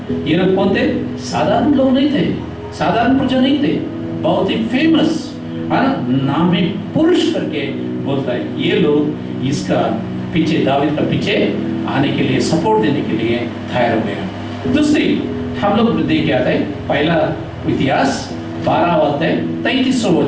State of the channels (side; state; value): both; identical; correlation 1.00